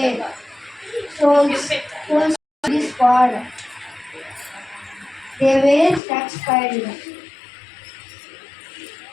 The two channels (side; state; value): right; drops out; at 6.0 s